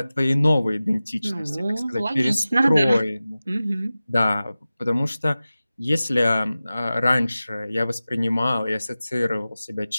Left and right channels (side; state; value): both; inverted; correlation -0.96